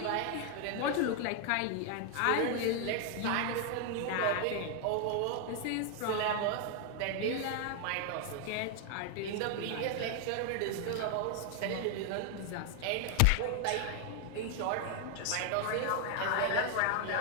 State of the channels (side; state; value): both; different; correlation 0.00